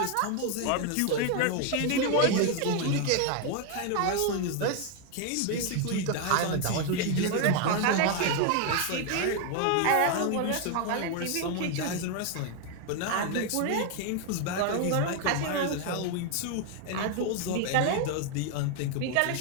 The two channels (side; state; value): both; different; correlation 0.01